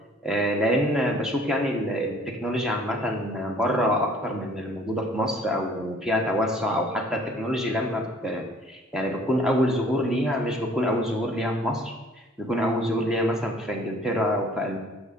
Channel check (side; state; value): both; normal; correlation 0.55